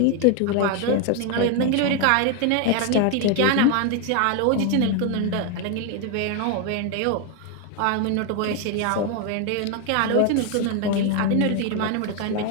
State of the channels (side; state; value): both; different; correlation 0.01